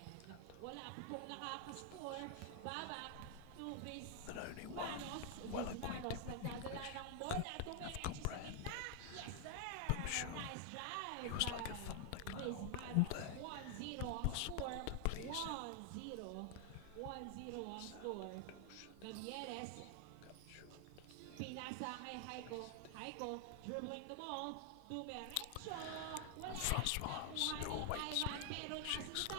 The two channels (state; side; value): different; both; correlation 0.00